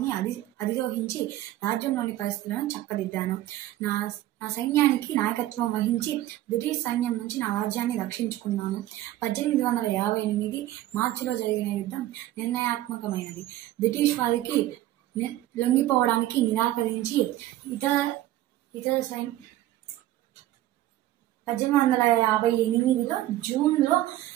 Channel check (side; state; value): left; quieter; 14.6 dB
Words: అధిరోహించి రాజ్యంలోని పరిస్థితులను చక్కదిద్దాను. నా సైన్యానికి నాయకత్వం వహించి బ్రిటిష్ సైన్యం నుంచి నా రాజ్యాన్ని రక్షించుకున్నాను. 1858 మార్చిలో జరిగిన యుద్ధం నిర్ణయాత్మకమైనది. బ్రిటిష్ వారికి లొంగిపోవడానికి నిరాకరించి ఇతర 1858లో జూన్లో